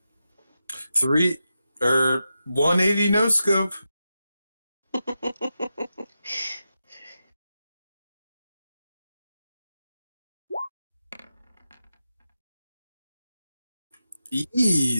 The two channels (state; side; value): inverted; both; correlation -0.89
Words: 180 no scope.